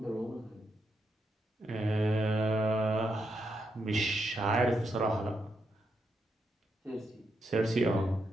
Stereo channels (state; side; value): normal; both; correlation 0.82